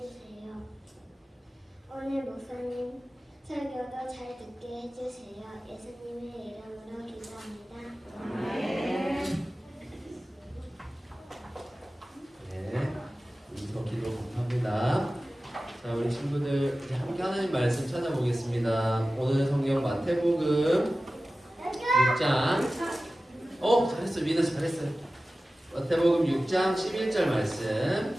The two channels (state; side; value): normal; both; correlation 0.96